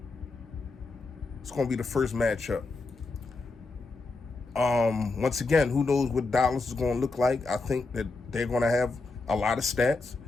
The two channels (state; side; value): quieter; right; 3.6 dB